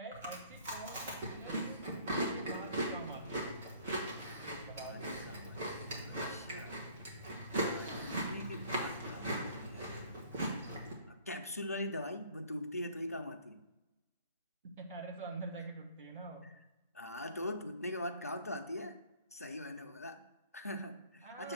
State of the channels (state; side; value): inverted; both; correlation -0.55